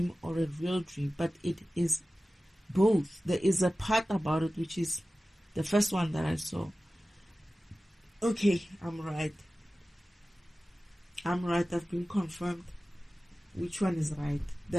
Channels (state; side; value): normal; both; correlation 0.96